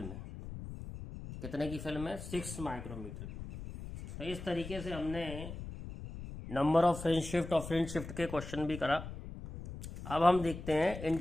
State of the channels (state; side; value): noise; left; rumble, 10 dB below the sound